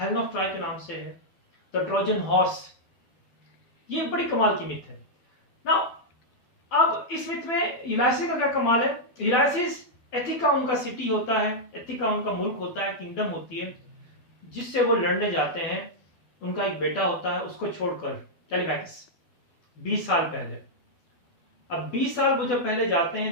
ऑफ ट्रॉय के नाम से है, द ट्रोजन हॉर्स. ये बड़ी कमाल की मिथ है. नाउ अब इस मिथ में यूलाइसिस का क्या कमाल है. यूलाइसिस एथिका उनका सिटी होता है, एथिका उनका मुल्क होता है, किंगडम होती है, जिससे वो लड़ने जाते हैं. उनका एक बेटा होता है, उसको छोड़कर टेलीमैक्स 20 साल पहले. अब 20 साल वो जब पहले जाते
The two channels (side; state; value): right; late; 12 ms